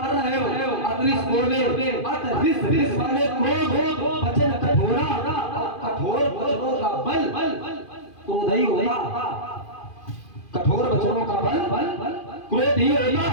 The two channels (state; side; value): late; right; 2.5 ms